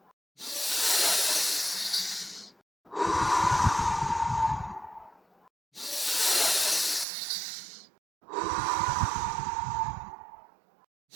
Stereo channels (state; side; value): drops out; left; at 7.1 s